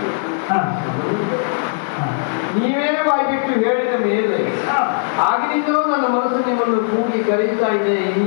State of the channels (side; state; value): right; silent; digital silence